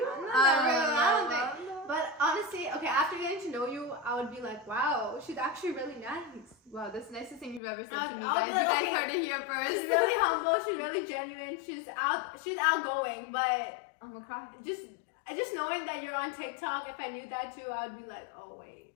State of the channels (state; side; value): drops out; right; at 7.6 s